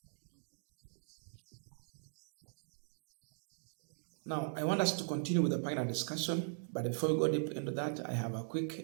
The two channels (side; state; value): left; silent; digital silence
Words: Now, I want us to continue with the panel discussion, but before we go deep into that, I have a